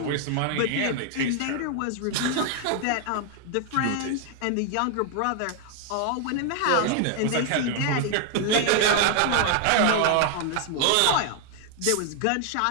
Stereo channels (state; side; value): different; both; correlation 0.00